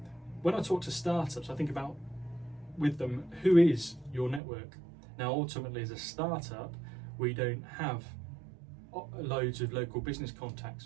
when I talk to startups, I think about with them, who is your network? Now, ultimately as a startup, we don't have loads of local business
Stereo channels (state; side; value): drops out; left; at 4.4 s